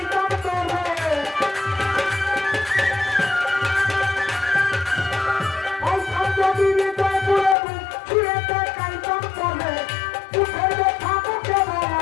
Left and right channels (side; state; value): right; drops out; at 7.6 s